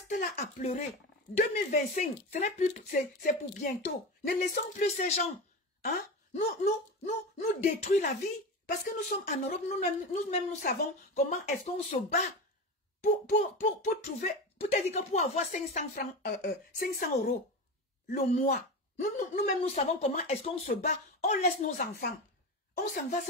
là à pleurer? 2025, ce n'est plus, c'est pour bientôt. Ne laissons plus ces gens, hein, nous détruire la vie. Parce que nous sommes en Europe, nous-mêmes nous savons comment est-ce qu'on se bat pour trouver, peut-être que pour avoir 500 francs, 500 € le mois. Nous-mêmes nous savons comment est-ce qu'on se bat. On laisse nos enfants. On s'en va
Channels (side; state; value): both; normal; correlation 0.24